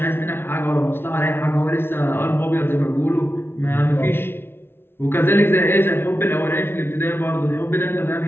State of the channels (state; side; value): late; right; 0.11 ms